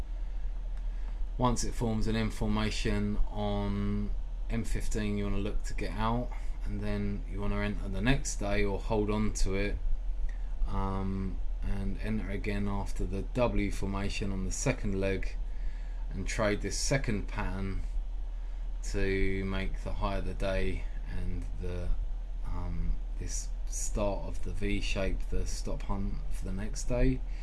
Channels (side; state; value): both; identical; correlation 1.00